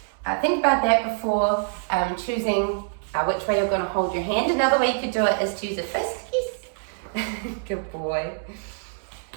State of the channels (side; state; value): left; silent; digital silence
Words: think about that before choosing which way you're going to hold your hand. Another way you could do it is to use a fist. Yes, good boy.